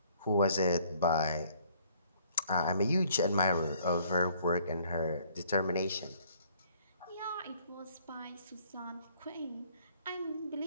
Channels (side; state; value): both; inverted; correlation -0.60